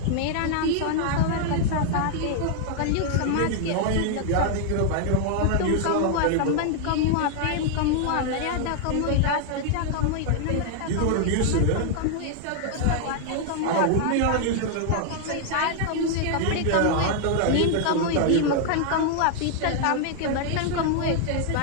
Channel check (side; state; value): both; different; correlation 0.00